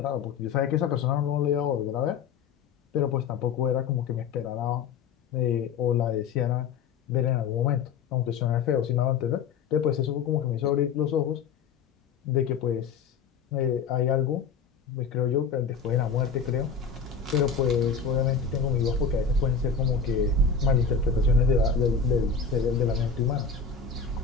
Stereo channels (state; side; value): quieter; right; 5.9 dB